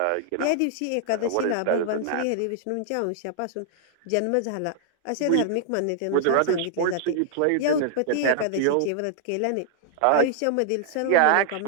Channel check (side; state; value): both; different; correlation -0.01